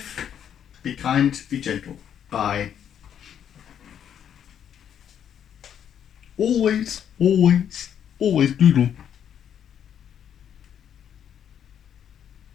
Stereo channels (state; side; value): quieter; right; 9.1 dB